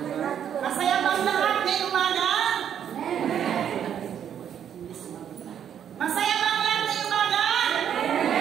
Masaya bang lahat ngayong umaga? Masaya bang lahat ngayong umaga?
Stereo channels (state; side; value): quieter; left; 9.1 dB